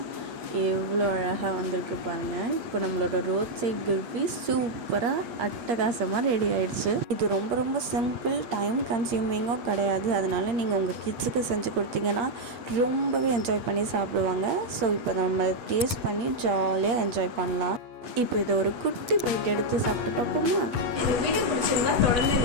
எவ்வளோ அழகாக வந்திருக்கு பாருங்கள். இப்போ நம்மளோட ரோட் சைட் குல்ஃபி சூப்பராக அட்டகாசமாக ரெடி ஆகிடுச்சு. இது ரொம்ப சிம்பிள், டைம் கன்சியூமிங்கும் கிடையாது. அதனால நீங்கள் உங்கள் கிட்ஸுக்கு செஞ்சு கொடுத்தீங்கன்னா ரொம்பவே என்ஜாய் பண்ணி சாப்பிடுவாங்க. ஸோ இப்போ நம்ம டேஸ்ட் பண்ணி ஜாலியாக என்ஜாய் பண்ணலாம். இப்போ இதை ஒரு குட்டி பைட் எடுத்து சாப்பிட்டு பார்ப்போமா? இந்த வீடியோ பிடிச்சிருந்தா தொடர்ந்து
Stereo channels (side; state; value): left; late; 8.2 ms